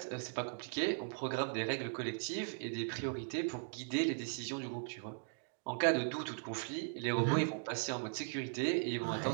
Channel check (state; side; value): silent; left; digital silence